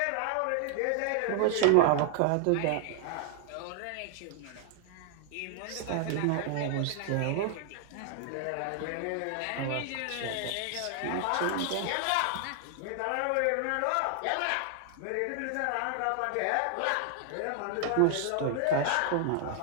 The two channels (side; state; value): both; different; correlation 0.00